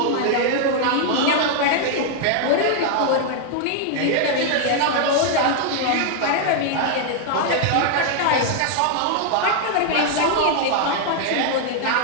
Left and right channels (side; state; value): both; different; correlation 0.00